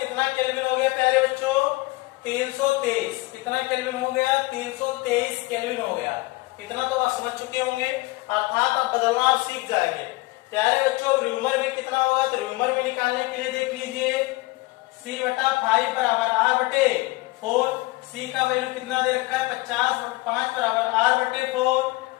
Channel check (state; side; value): quieter; right; 22.1 dB